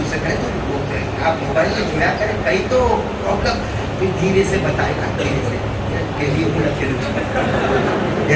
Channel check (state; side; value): identical; both; correlation 1.00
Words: کہے تو وہ آپ موبائل میں جڑا کریں کہیں تو پرابلم پھر دھیرے سے بتائے گا دھیرے سے کہ یہ بولا کہ